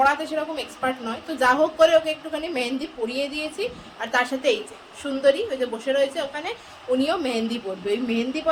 সেরকম এক্সপার্ট নয়, তো যা হোক করে ওকে একটুখানি মেহেন্দি পরিয়ে দিয়েছি। আর তার সাথে এই যে সুন্দরী ওই যে বসে রয়েছে ওখানে, উনিও মেহেন্দি পরবে। ওই মেহেন্দি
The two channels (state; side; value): identical; both; correlation 1.00